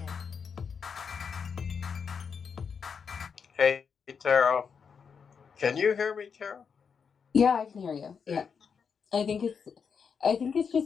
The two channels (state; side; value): quieter; right; 6.3 dB